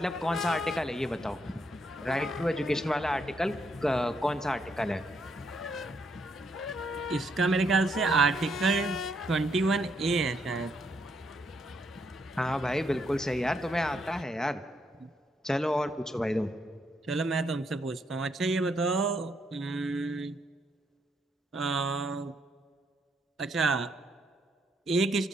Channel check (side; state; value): both; normal; correlation 0.75